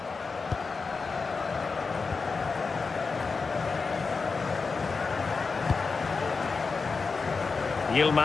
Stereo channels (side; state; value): right; quieter; 4.6 dB